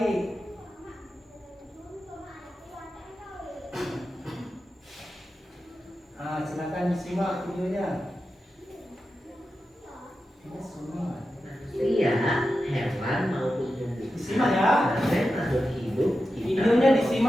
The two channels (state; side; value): normal; both; correlation 0.91